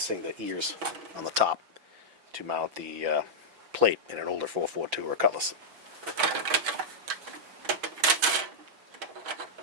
the ears on the top to mount the plate in an older 442 or Cutlass.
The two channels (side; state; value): left; late; 6.2 ms